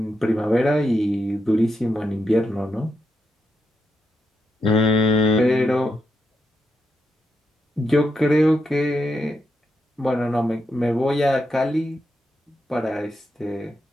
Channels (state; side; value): normal; both; correlation 0.83